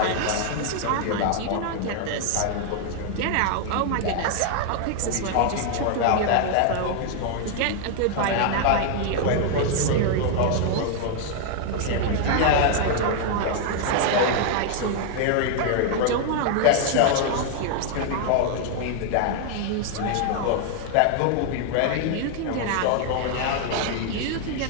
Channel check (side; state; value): both; different; correlation 0.00